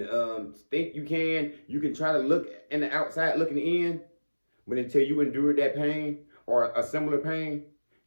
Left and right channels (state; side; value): inverted; both; correlation -1.00